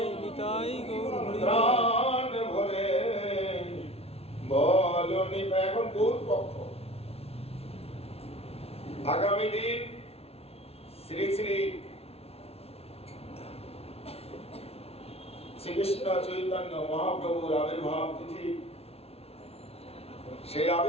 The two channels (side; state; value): right; late; 0.30 ms